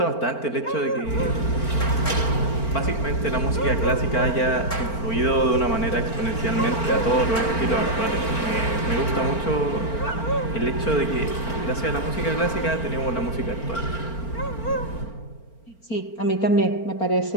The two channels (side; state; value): right; late; 4.4 ms